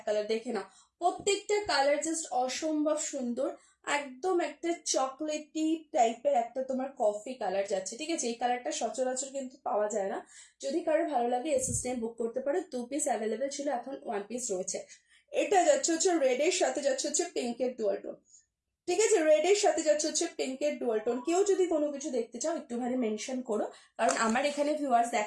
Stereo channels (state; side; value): identical; both; correlation 1.00